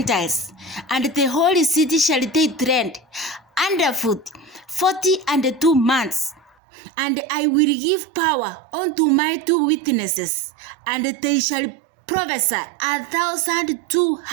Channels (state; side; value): drops out; left; at 6.5 s